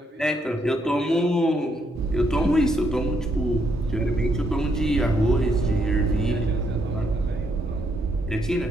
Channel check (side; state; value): both; normal; correlation 0.75